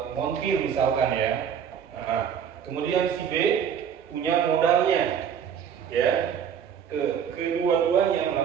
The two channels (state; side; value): quieter; left; 8.1 dB